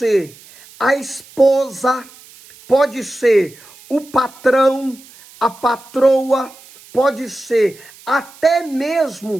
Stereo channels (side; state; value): right; noise; hiss, 23 dB below the sound